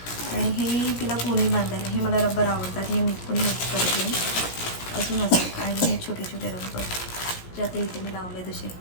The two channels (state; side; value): late; right; 17 ms